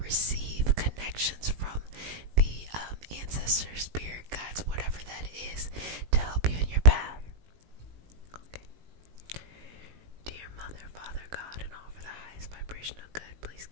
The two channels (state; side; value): late; left; 18 ms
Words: receive connections from the ancestors, spirit guides, whatever that is, to help you in your path. Okay. Dear Mother, Father, God, and all for the highest vibration of good, please